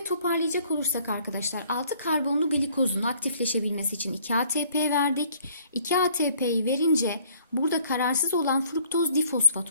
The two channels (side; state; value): both; inverted; correlation -0.60